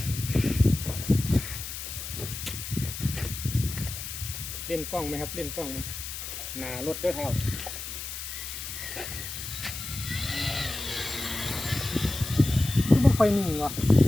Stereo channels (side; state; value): left; noise; hiss, 7 dB below the sound